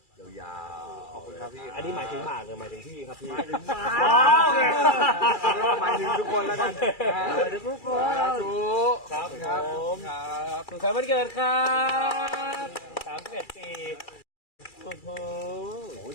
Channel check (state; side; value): late; right; 2.3 ms